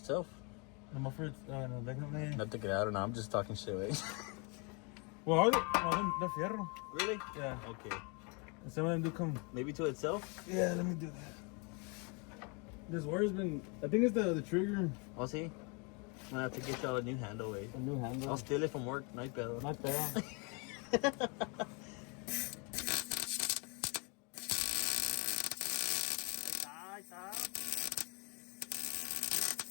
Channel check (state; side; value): quieter; right; 32.8 dB